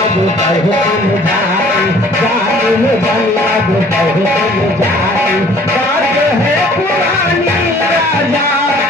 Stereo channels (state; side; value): normal; both; correlation 0.54